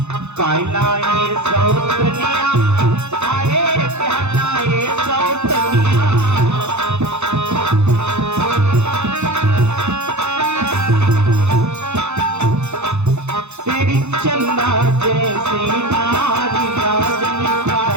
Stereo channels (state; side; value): late; left; 0.81 ms